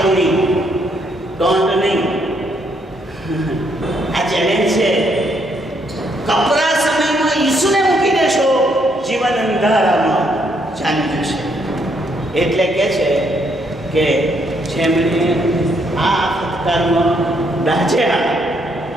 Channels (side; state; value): both; normal; correlation 0.72